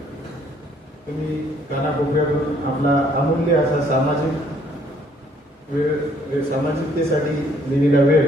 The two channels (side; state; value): both; normal; correlation 0.64